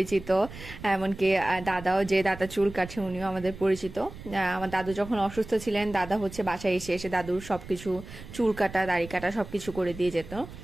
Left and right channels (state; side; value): noise; right; rumble, 14 dB below the sound